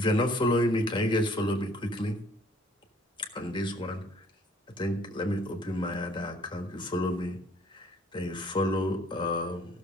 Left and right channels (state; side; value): normal; both; correlation 0.58